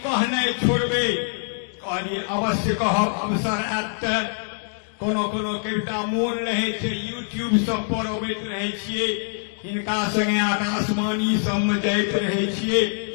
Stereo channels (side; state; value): right; silent; digital silence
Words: कहनाइ छोड़बे। कहलिए अवश्य कहब, अवसर आयत त कोनो कोनो कविता मोन रहे छे यूट्यूब सब पर अबैत रहे छिए, हिनका संगे आकाशवाणी सब में जाइत रहे छिए।